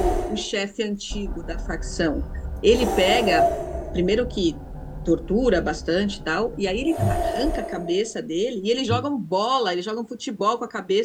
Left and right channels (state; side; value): identical; both; correlation 1.00